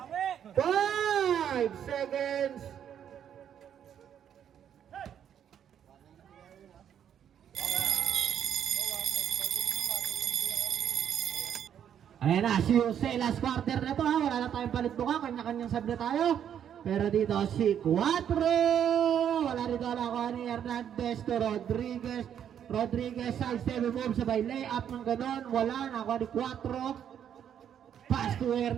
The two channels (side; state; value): left; quieter; 9.2 dB